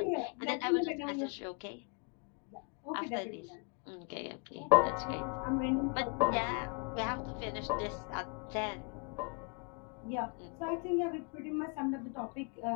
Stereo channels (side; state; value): right; quieter; 35.7 dB